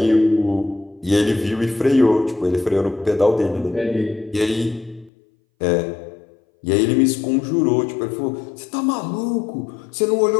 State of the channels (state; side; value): drops out; right; at 5.1 s